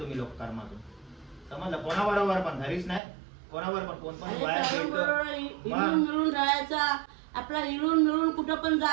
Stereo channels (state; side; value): drops out; left; at 3.0 s